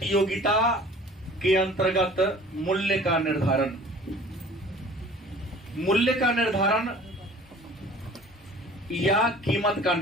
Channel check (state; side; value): normal; both; correlation 0.48